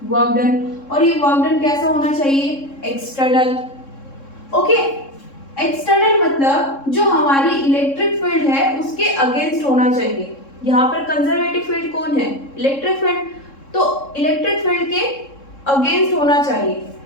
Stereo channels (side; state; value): right; late; 3.7 ms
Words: वर्क डन, और ये वर्क डन कैसा होना चाहिए, एक्सटर्नल। ओके, एक्सटर्नल मतलब जो हमारी इलेक्ट्रिक फील्ड है उसके अगेंस्ट होना चाहिए। यहाँ पर कंजर्वेटिव फील्ड कौन है, इलेक्ट्रिक फील्ड, तो इलेक्ट्रिक फील्ड के अगेंस्ट होना चाहिए।